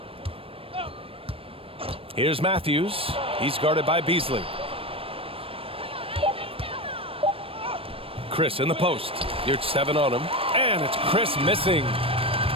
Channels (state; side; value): late; left; 0.27 ms